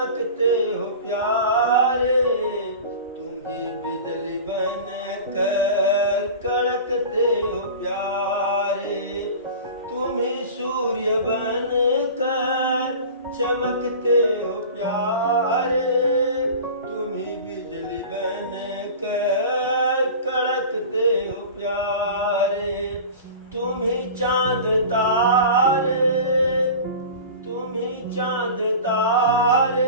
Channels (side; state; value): both; inverted; correlation -0.36